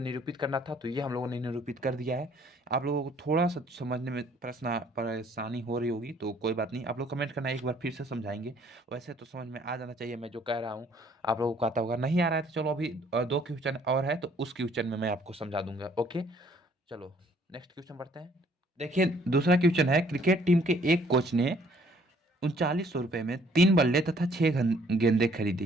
करना था, तो ये हम लोगों ने निरूपित कर दिया है। आप लोगों को थोड़ा सा समझने में परेशानी हो रही होगी, तो कोई बात नहीं, आप लोग कमेंट करना, एक बार फिर से समझाएंगे। वैसे तो समझ में आ जाना चाहिए मैं जो कह रहा हूँ। आप लोगों को आता होगा, नहीं आ रहा है तो चलो अभी 2 क्वेश्चन और है, तो उस क्वेश्चन में मैं आपको समझा दूंगा। ओके, चलो नेक्स्ट क्वेश्चन बढ़ते हैं। देखिए दूसरा क्वेश्चन है, क्रिकेट टीम के एक कोच ने 3900 रुपये में 3 बल्ले तथा 6 गेंदें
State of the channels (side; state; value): both; normal; correlation 0.61